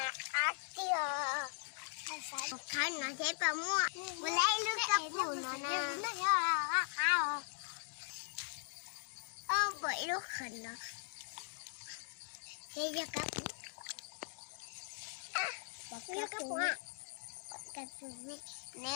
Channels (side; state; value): right; silent; digital silence